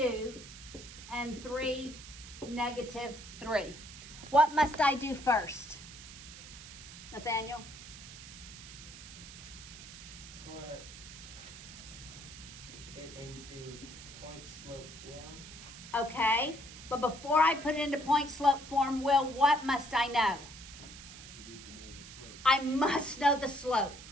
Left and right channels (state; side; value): noise; right; hiss, 15 dB below the sound